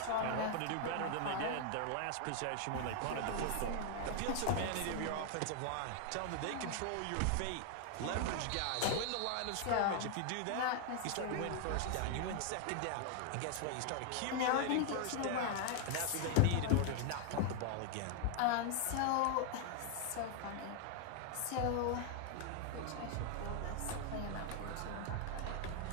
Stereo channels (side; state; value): both; different; correlation 0.00